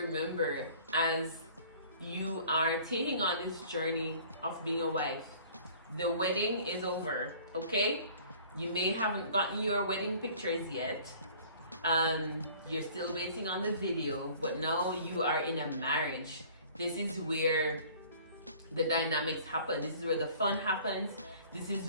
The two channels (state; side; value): inverted; both; correlation -0.51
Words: as you are taking on this journey of being a wife. The wedding is over, okay? You may haven't gotten your wedding pictures yet. You're still waiting on the video, but now you are in a marriage. This is where the dynamics happen. This is where the fun happens. This